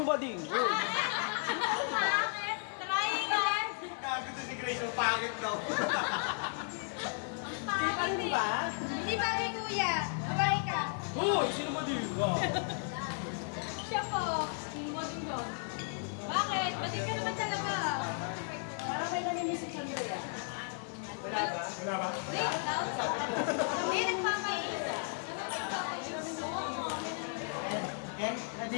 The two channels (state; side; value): silent; right; 55 dB below the other